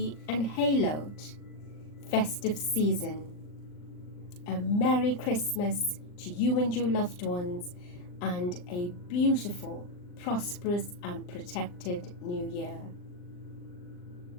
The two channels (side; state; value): right; late; 39 ms